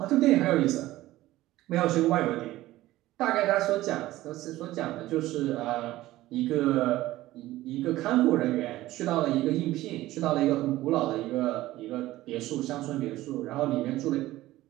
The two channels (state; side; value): quieter; left; 16.4 dB